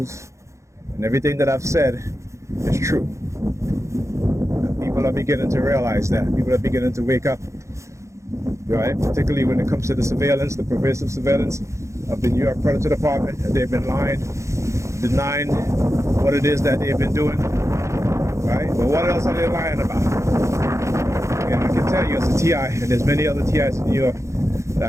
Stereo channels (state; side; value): late; left; 0.14 ms